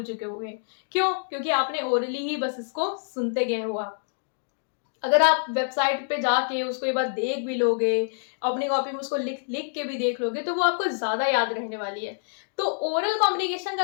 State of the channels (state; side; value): silent; right; digital silence